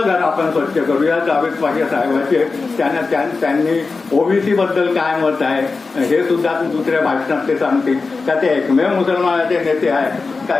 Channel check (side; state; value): right; quieter; 4.1 dB